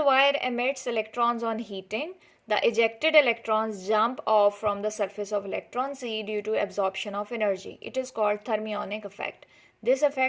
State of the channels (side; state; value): both; identical; correlation 1.00